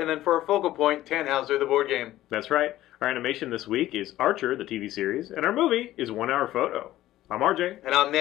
then for our focal point, Tannhauser, the board game. That's right. Our animation this week is Archer, the TV series, and our movie is 1 Hour Photo. I'm RJ. And I'm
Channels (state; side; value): quieter; right; 14.7 dB